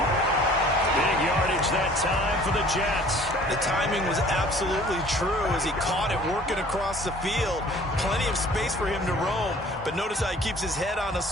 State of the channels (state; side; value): normal; both; correlation 0.51